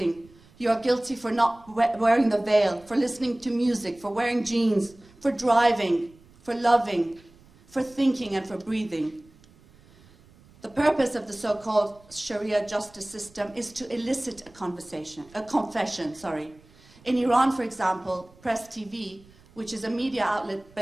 You are guilty for not wearing the veil, for listening to music, for wearing jeans, for driving, for loving, for thinking, and for breathing. The purpose of the so-called Sharia justice system is to elicit a confession. In Iran, for example, Press TV, which is a media outlet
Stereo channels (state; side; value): noise; right; rumble, 27 dB below the sound